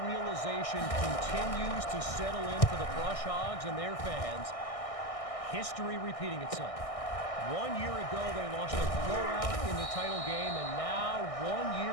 realization continues to settle in for the Brush Hogs and their fans. History repeating itself. 1 year ago, they lost a blowout in the title game, and now 1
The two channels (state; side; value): late; right; 1.6 ms